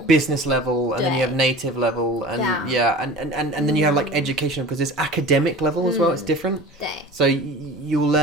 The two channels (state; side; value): normal; both; correlation 0.38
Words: business level, and then you have native level, and and then you have like educational, because there's academic level as well. It's different. 对 So you will